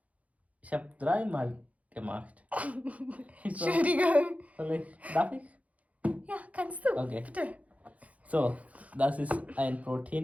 Ich habe 3-mal gemacht. Entschuldigung. Darf ich? Ja, kannst du. Okay. Bitte. So, das ist ein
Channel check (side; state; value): left; late; 0.068 ms